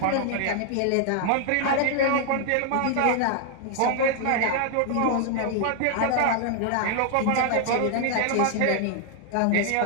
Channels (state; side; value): different; both; correlation 0.00